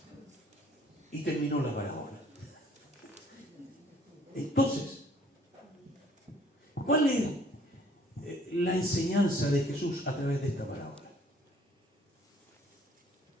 Y terminó la parábola. Entonces, ¿cuál es la enseñanza de Jesús a través de esta parábola?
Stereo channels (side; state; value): both; normal; correlation 0.59